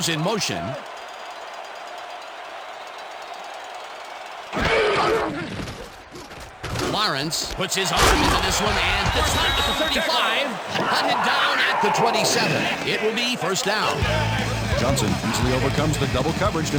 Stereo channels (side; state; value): both; identical; correlation 1.00